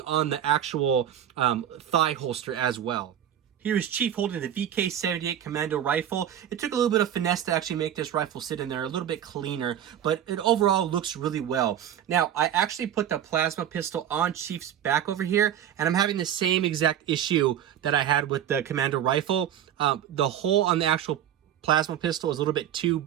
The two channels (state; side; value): quieter; left; 10.2 dB